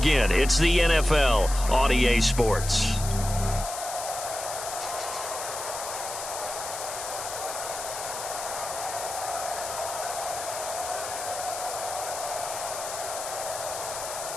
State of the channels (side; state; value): left; noise; hiss, 7 dB below the sound